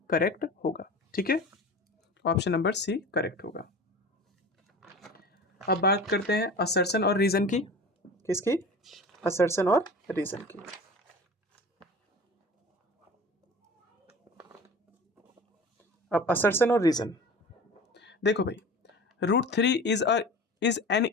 करेक्ट होगा, ठीक है, ऑप्शन नंबर सी करेक्ट होगा। अब बात करते हैं असर्शन और रीजन की, किसकी, असर्शन और रीजन की। अब असर्शन और रीजन देखो भाई, √3 इज एन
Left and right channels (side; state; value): both; normal; correlation 0.37